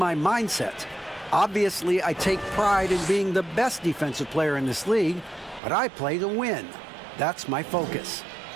mindset. Obviously, I take pride in being the best defensive player in this league, but I play to win. That's my focus.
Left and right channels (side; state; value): left; drops out; at 5.6 s